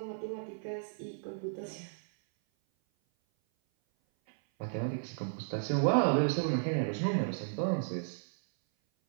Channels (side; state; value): left; silent; 55 dB below the other